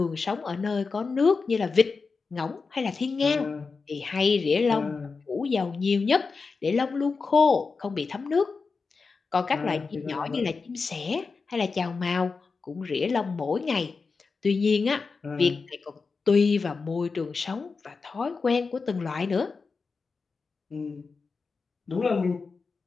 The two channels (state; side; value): quieter; right; 4.6 dB